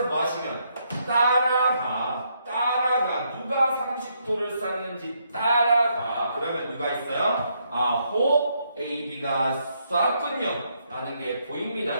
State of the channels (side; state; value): both; inverted; correlation -0.75